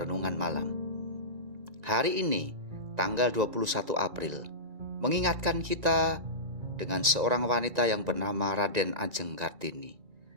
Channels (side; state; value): left; late; 2.3 ms